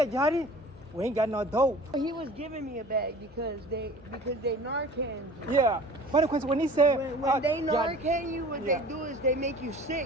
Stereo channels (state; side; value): normal; both; correlation 0.44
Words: Jari, we ain't got no dope. He was giving me a bag because they Narcan. Yeah. But of course, when he said, When they Jari- Narcan you, what Yeah. they do is they make you